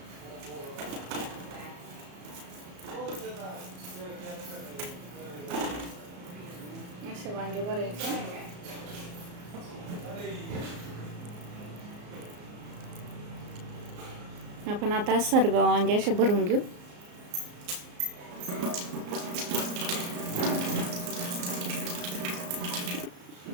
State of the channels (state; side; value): late; left; 34 ms